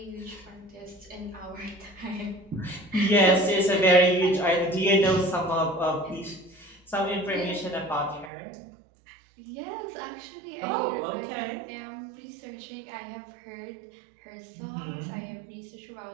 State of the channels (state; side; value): drops out; left; at 8.3 s